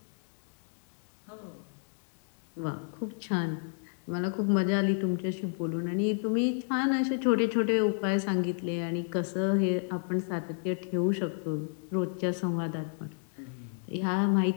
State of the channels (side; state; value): right; silent; 57 dB below the other